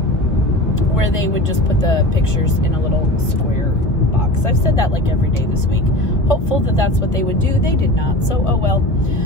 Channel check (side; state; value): right; late; 1.3 ms